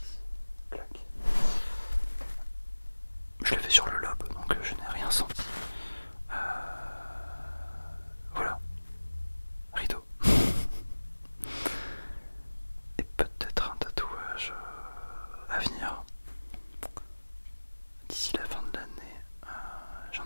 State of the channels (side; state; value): both; inverted; correlation -1.00